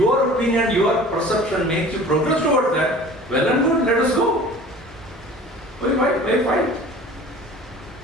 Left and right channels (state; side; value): normal; both; correlation 0.43